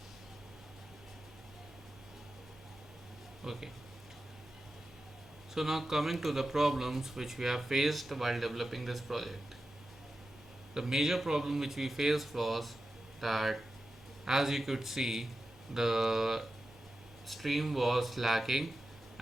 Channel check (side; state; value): both; normal; correlation 0.92